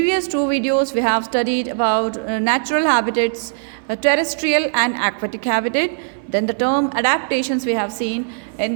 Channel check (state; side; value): silent; left; 66 dB below the other